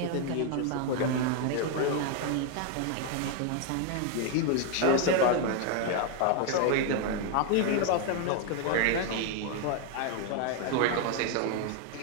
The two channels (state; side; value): different; both; correlation 0.00